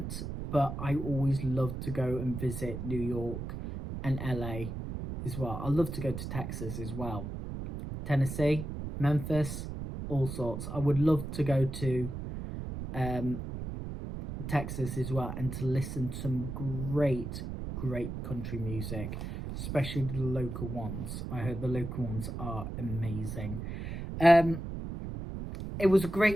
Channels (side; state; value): right; noise; rumble, 6 dB below the sound